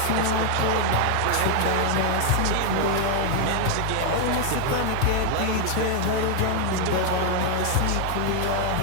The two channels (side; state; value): both; different; correlation 0.00